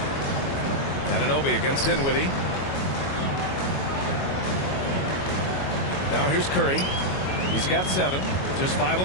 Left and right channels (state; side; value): late; right; 22 ms